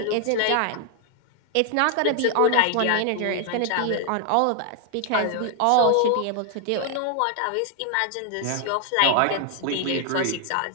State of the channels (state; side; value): different; both; correlation 0.00